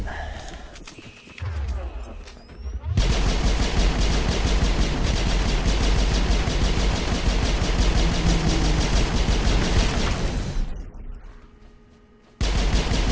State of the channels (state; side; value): identical; both; correlation 1.00